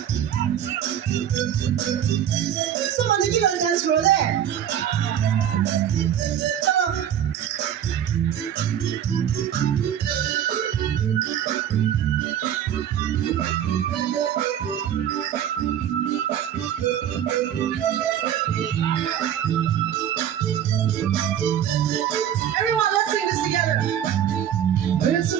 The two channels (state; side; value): quieter; left; 10.0 dB